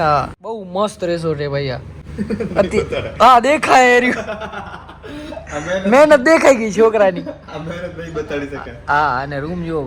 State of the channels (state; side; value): identical; both; correlation 1.00